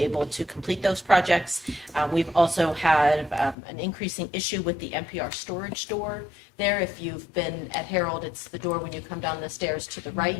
able to complete those projects. We've also had an increasing issue with the NPR storage door there. If you've been at Harold, it's the door when you come down the stairs to the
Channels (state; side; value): drops out; right; at 3.6 s